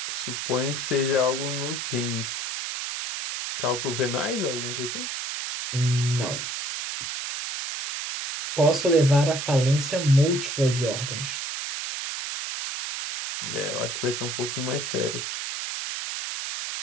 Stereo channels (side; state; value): right; noise; hiss, 4 dB below the sound